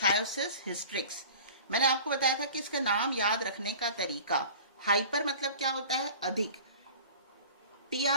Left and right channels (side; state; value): both; inverted; correlation -0.41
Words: हिस्ट्रिक्स। मैंने आपको बताया था कि इसका नाम याद रखने का तरीका, हाइपर मतलब क्या होता है? अधिक,